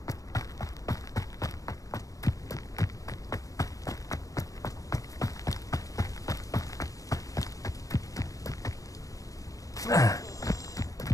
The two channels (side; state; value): right; late; 0.16 ms